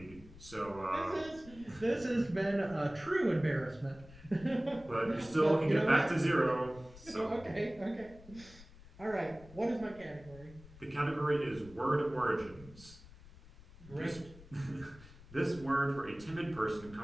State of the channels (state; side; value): noise; left; rumble, 20 dB below the sound